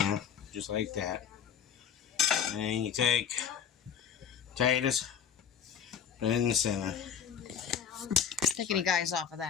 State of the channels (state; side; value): quieter; right; 8.1 dB